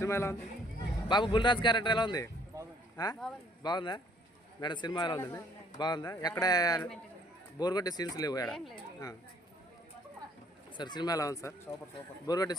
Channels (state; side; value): normal; both; correlation 0.61